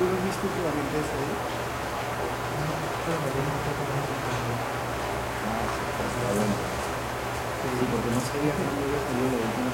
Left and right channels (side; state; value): both; identical; correlation 1.00